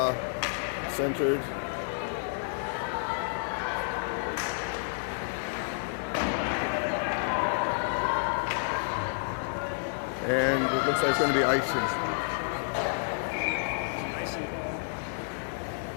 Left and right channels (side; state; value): right; silent; digital silence